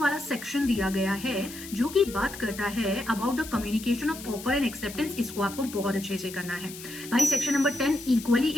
सेक्शन दिया गया है जो कि बात करता है about the communication of offer and acceptance, इसको आपको बहुत अच्छे से करना है भाई। सेक्शन नंबर 10 इक्वली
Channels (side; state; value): left; noise; hiss, 13 dB below the sound